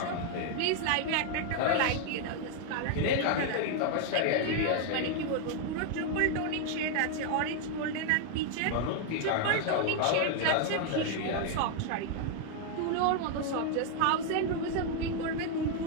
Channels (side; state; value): both; different; correlation 0.00